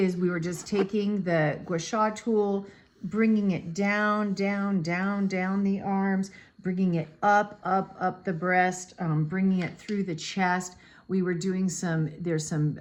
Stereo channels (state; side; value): identical; both; correlation 1.00